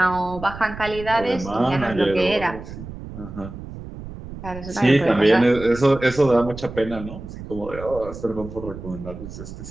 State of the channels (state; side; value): noise; right; rumble, 12 dB below the sound